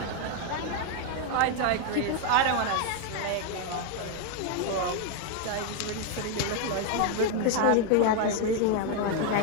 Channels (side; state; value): both; different; correlation 0.01